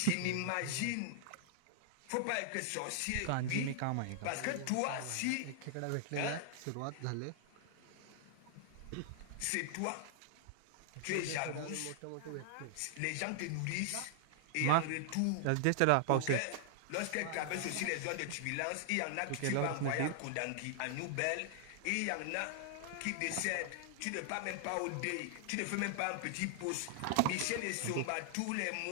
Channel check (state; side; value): different; both; correlation 0.00